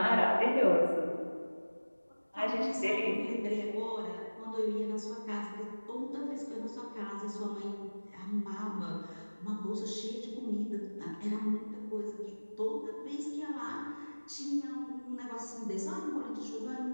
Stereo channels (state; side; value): inverted; both; correlation -1.00